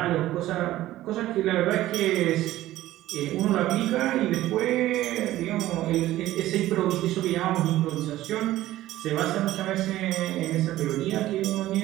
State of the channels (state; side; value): quieter; left; 15.1 dB